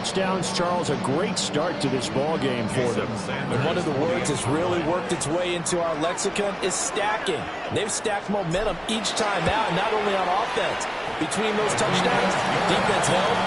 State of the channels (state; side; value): identical; both; correlation 1.00